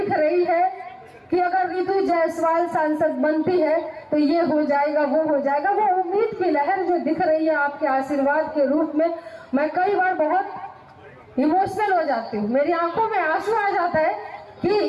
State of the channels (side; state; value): both; identical; correlation 1.00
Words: रही है कि अगर रितु जायसवाल सांसद बनती है तो ये हो जाएगा, वो हो जाएगा। वो उम्मीद की लहर जो दिख रही है आपके आशीर्वाद के रूप में, मैं कई बार बहुत इमोशनल हो जाती हूँ। मेरी आंखों में आंसू आ जाता है